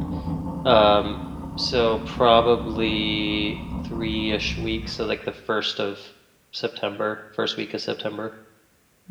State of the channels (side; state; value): both; identical; correlation 1.00